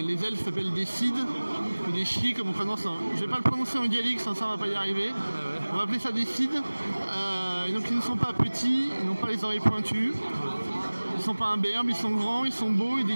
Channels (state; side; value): inverted; both; correlation -1.00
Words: elfes s'appellent des Cid ou des Chi comme on prononce. Je ne vais pas le prononcer en gaélique, sans ça on ne va pas y arriver. On va appeler ça des Cid. Donc ils ne sont pas petits, ils n'ont pas les oreilles pointues. Ils ne sont pas imberbes, ils sont grands, ils sont beaux, ils